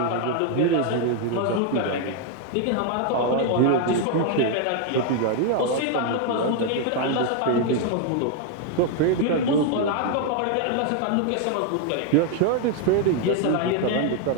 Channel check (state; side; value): different; both; correlation 0.00